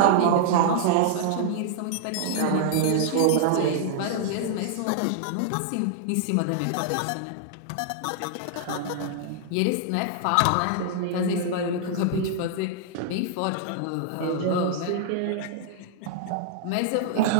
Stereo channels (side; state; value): both; different; correlation -0.01